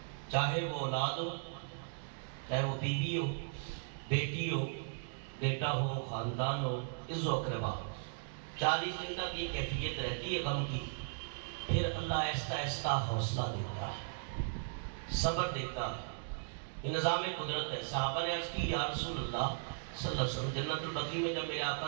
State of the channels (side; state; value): left; silent; digital silence